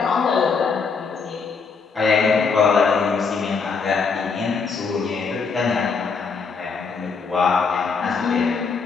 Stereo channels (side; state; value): right; quieter; 5.2 dB